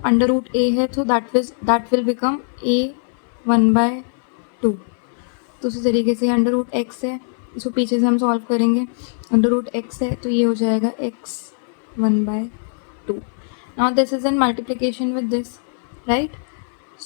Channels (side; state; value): right; silent; 65 dB below the other